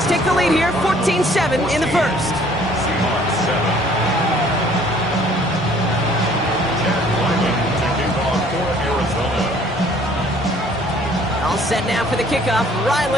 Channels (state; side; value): normal; both; correlation 0.57